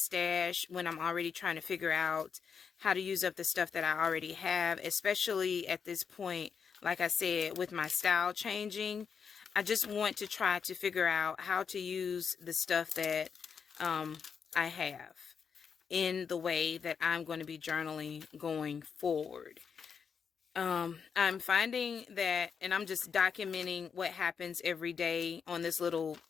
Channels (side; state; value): right; quieter; 6.5 dB